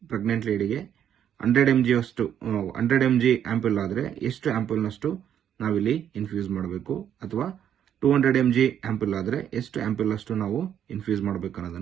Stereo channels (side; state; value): left; quieter; 9.6 dB